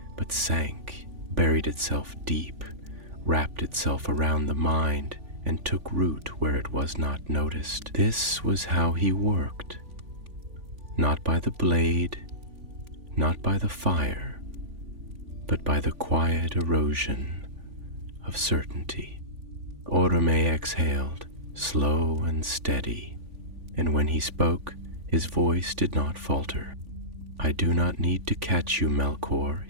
but sank, buried itself deep, wrapped itself around the mind, and took root where it was not noticed. This was how he worked. Not by the blade, not by the fire, but by the quiet erosion of certainty. Oromë exhaled, slow and steady, and when he spoke, his voice did not falter. "I do not need to catch you, Melkor,"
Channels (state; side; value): late; left; 3.5 ms